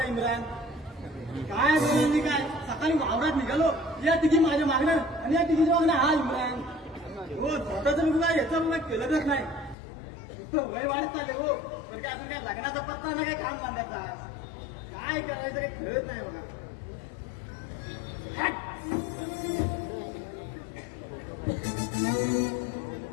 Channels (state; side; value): drops out; right; at 9.8 s